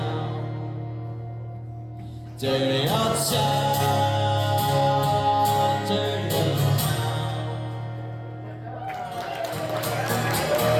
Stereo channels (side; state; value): both; identical; correlation 1.00